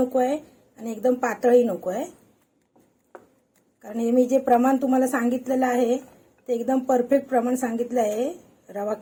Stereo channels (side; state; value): both; identical; correlation 1.00